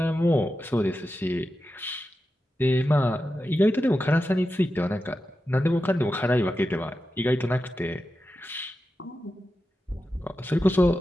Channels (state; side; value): normal; both; correlation 0.91